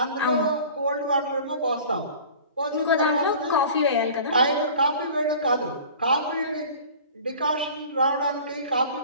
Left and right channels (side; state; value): both; inverted; correlation -0.42